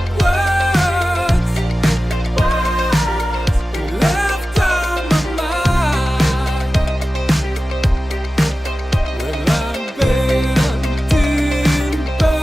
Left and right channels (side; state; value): both; normal; correlation 0.95